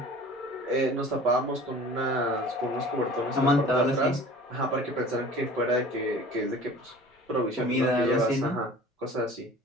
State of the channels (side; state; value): both; normal; correlation 0.44